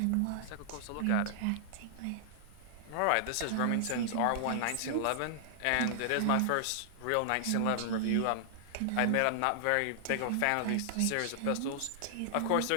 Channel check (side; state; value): both; different; correlation -0.01